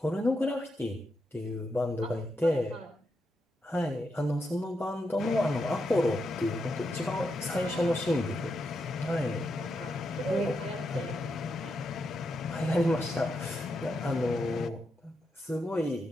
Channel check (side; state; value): both; normal; correlation 0.84